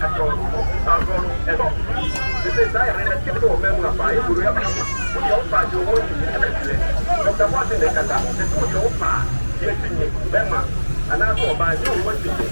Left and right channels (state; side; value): inverted; both; correlation -1.00